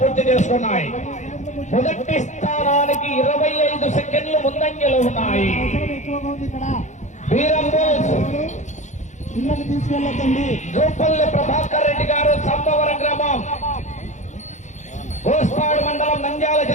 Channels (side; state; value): right; late; 0.35 ms